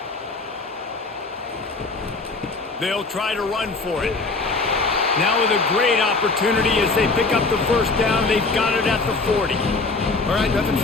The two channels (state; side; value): quieter; right; 3.7 dB